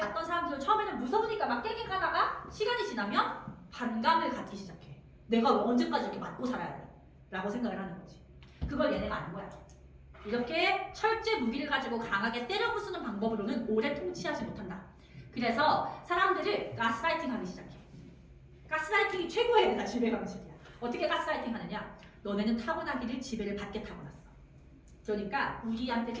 사람들은 처음에는 무서우니까 막 깨갱 하다가 시간이 지나면 반감을 갖기 시작해. 내가 언제까지 이렇게 맞고 살아야 돼? 라고 생각을 하는 거지. 그걸 얘네가 아는 거야. 이렇게 철제 무기를 가지고 강하게 때려 부수는 방법으로는 오래 통치하지 못한다. 그래서 사람들을 가스라이팅 하기 시작해. 가스라이팅이 최고의 얘네가 지배 방식이야. 어떻게 가스라이팅 하느냐? 너네는 타고나기를 지배를 받게 타고났어. 그러니까 우리한테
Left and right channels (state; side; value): identical; both; correlation 1.00